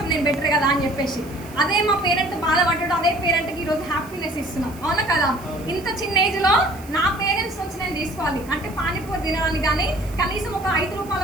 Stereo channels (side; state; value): right; noise; hiss, 21 dB below the sound